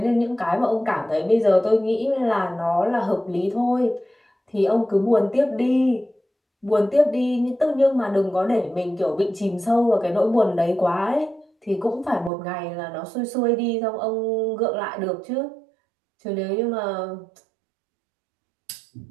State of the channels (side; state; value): left; drops out; at 12.3 s